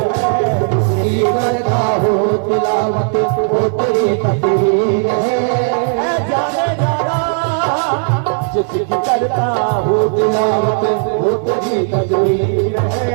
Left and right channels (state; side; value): silent; left; 56 dB below the other